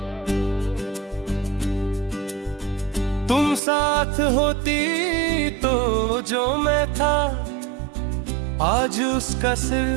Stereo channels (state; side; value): drops out; left; at 3.6 s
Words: तुम साथ होती तो जो मैं था, आज उसका